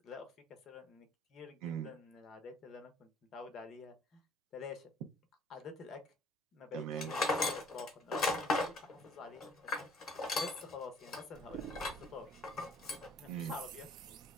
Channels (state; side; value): normal; both; correlation 0.57